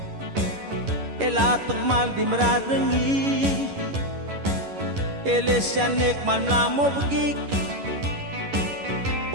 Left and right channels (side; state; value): left; late; 11 ms